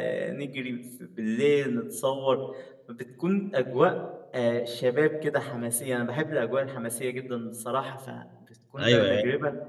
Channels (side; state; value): both; identical; correlation 1.00